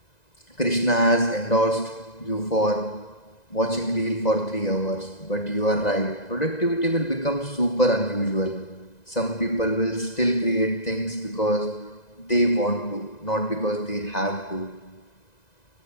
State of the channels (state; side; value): late; right; 1.9 ms